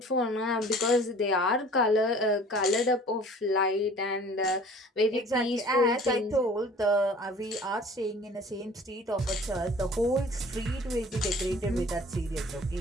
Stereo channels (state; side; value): normal; both; correlation 0.48